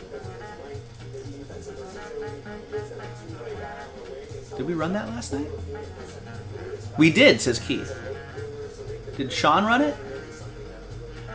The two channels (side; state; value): both; identical; correlation 1.00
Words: Did we run that last night? We did, says Keith. Did Sean run it?